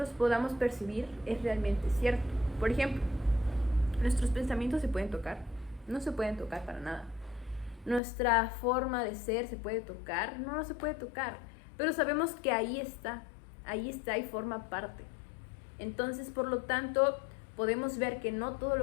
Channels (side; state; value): right; drops out; at 8.0 s